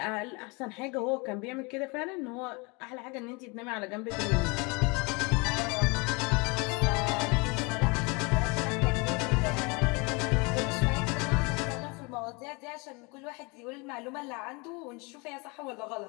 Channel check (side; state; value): right; quieter; 29.1 dB